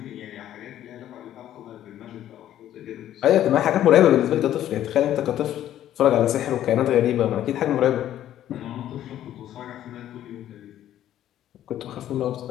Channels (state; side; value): quieter; right; 11.9 dB